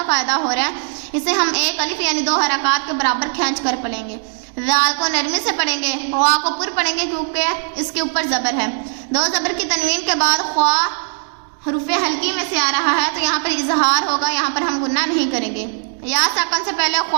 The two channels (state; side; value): silent; left; 67 dB below the other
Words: قاعدہ ہو رہا ہے. اسے ہم ایک الف یعنی 2 حرکات کے برابر کھینچ کر پڑھیں گے. ذال کو نرمی سے پڑھیں گے. خوا کو پر پڑھیں گے کیونکہ اس کے اوپر زبر ہے. دو زبر کی تنوین کے بعد خوا حروف حلقی میں سے آ رہا ہے تو یہاں پر اظہار ہوگا. یہاں پر ہم گنہ نہیں کریں گے. یا ساکن سے پہلے